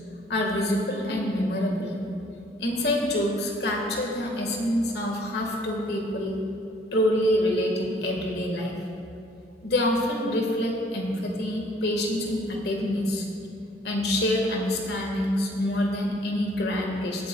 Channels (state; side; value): normal; both; correlation 0.59